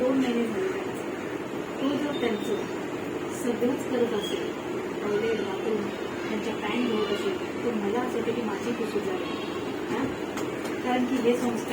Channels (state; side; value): identical; both; correlation 1.00